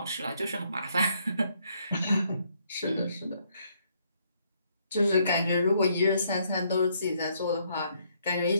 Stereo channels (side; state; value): both; inverted; correlation -0.71